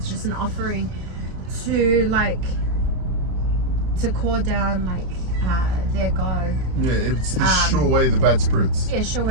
just an offering to like to call down like their god. Yeah, it's to show away the bad spirits. Yeah, show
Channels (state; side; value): late; left; 32 ms